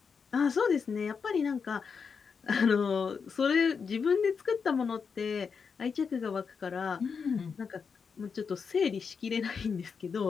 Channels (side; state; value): right; quieter; 5.8 dB